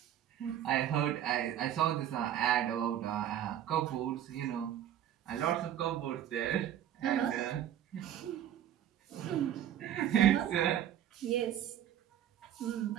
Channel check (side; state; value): left; quieter; 11.0 dB